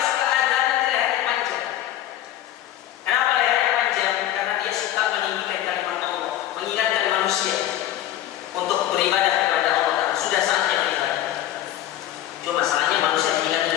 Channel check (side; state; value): right; quieter; 12.8 dB